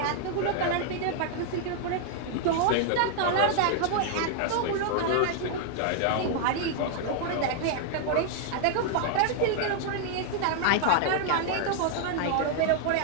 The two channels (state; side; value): different; both; correlation 0.00